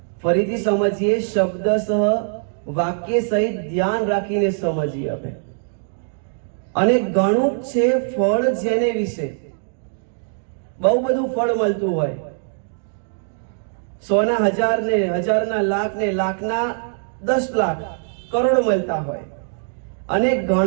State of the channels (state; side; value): silent; left; digital silence